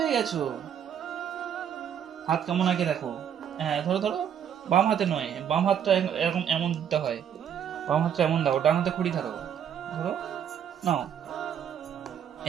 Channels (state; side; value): quieter; left; 8.8 dB